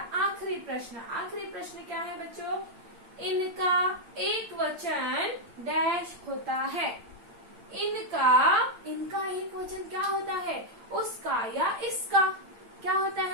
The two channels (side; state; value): left; late; 8.8 ms